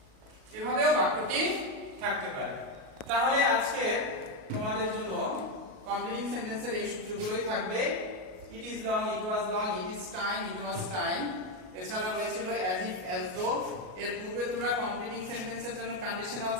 এভাবেও বাক্যটি থাকতে পারে। তাহলে আজকে তোমাদের জন্য কমপ্লিটিং সেন্টেন্সের এই সূত্রগুলোই থাকবে। ইট is long, it was long, it is time, it was time. এছাড়া রয়েছিল অ্যাজ ইফ, অ্যাজ দো। এর পূর্বে তোমরা কমপ্লিটিং সেন্টেন্সের জন্য কন্ডিশনাল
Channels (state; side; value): late; left; 38 ms